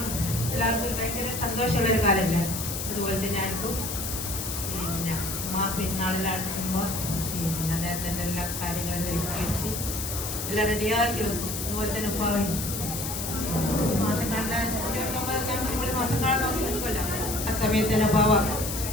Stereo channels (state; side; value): noise; left; hiss, 5 dB below the sound